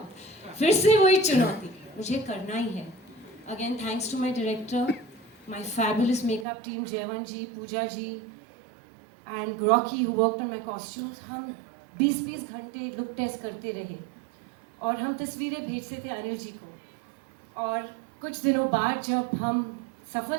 फिर से वही चुनौती, मुझे करना ही है। Again thanks to my director, my fabulous makeup team, Jaivan ji, Pooja ji, and Rocky who worked on my costumes. हम 20-20 घंटे लुक टेस्ट करते रहे और हम तस्वीरें भेजते थे अनिल जी को। और कुछ दिनों बाद जब हम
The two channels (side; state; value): left; drops out; at 6.5 s